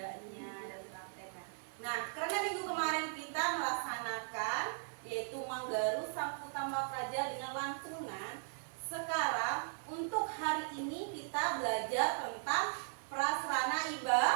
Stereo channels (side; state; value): left; silent; 52 dB below the other